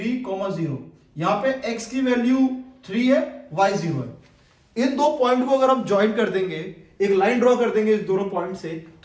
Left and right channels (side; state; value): both; identical; correlation 1.00